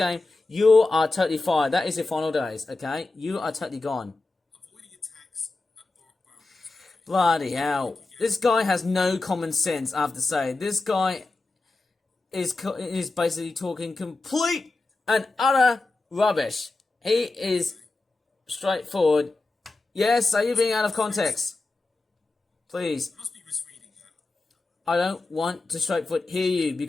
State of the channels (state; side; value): quieter; right; 3.3 dB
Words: you are totally fired. That is your final days, okay? You are totally gone. Bloody hell. This guy has no common sense, I have to say. This guy is basically talking complete and utter rubbish. He is straightforward. Yes, are you being out of context? Please. You must be misreading that. I don't want to straightforward hear you